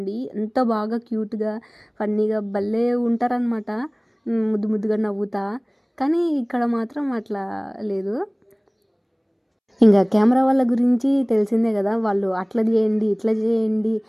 ఎంత బాగా క్యూట్గా ఫన్నీగా భలే ఉంటారనమాట, ముద్దు ముద్దుగా నవ్వుతా. కానీ ఇక్కడ మాత్రం అట్లా లేదు. ఇంకా కెమెరా వాళ్ళ గురించి తెలిసిందే కదా, వాళ్ళు అట్లా చేయండి ఇట్లా చేయండి,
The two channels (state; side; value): identical; both; correlation 1.00